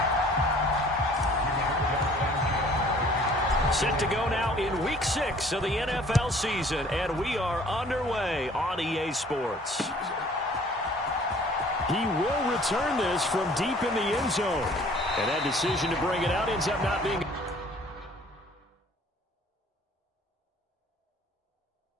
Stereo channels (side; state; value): both; normal; correlation 0.54